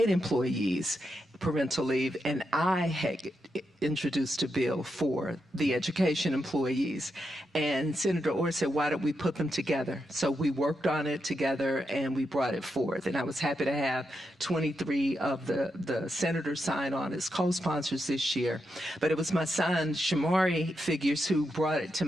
employees, parental leave, and I had introduced a bill for the education employees. And Senator Orr said, why don't we put them together? So we worked on it together and we brought it forth. And I was happy to have 23 of the senators sign on as co-sponsors this year. But it was my son, Shamari Figures, who brought it to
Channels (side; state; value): both; normal; correlation 0.84